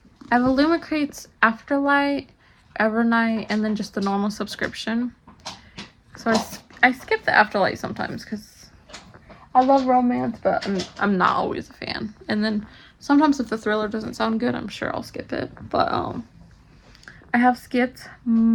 I have Illumicrate's Afterlight, Evernight, and then just the normal subscription. So I skip the Afterlight sometimes because I love romance, but I'm not always a fan. And then sometimes if the thriller doesn't sound good, I'm sure I'll skip it. But I have skipped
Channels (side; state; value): both; identical; correlation 1.00